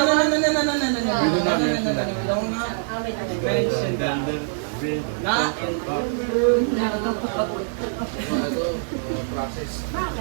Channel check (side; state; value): left; silent; digital silence